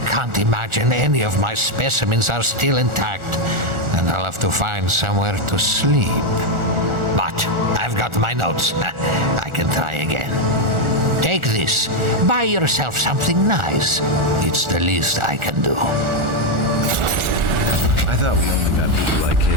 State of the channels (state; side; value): late; left; 1.4 ms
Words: can't imagine any of my specimens are still intact, and I'll have to find somewhere to sleep. But I've got my notes. I can try again. Take this. Buy yourself something nice. It's the least I can do. I thought we only met people like